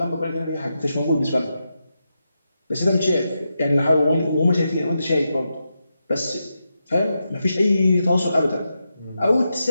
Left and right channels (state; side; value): inverted; both; correlation -0.87